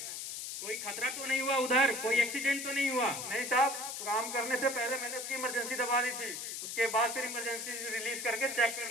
कोई खतरा तो नहीं हुआ उधर? कोई एक्सीडेंट तो नहीं हुआ? नहीं साहब, काम करने से पहले मैंने उसकी इमरजेंसी दबा दी थी, उसके बाद फिर इमरजेंसी रिलीज करके चेक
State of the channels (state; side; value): noise; left; hiss, 6 dB below the sound